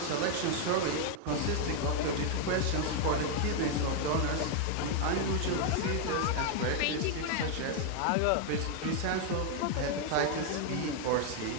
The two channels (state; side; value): different; both; correlation 0.01